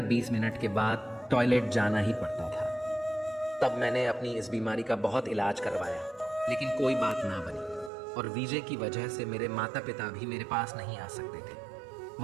20 मिनट के बाद टॉयलेट जाना ही पड़ता था। तब मैंने अपनी इस बीमारी का बहुत इलाज करवाया लेकिन कोई बात ना बनी। और वीज़े की वजह से मेरे माता पिता भी मेरे पास नहीं आ सकते थे।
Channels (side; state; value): left; drops out; at 7.9 s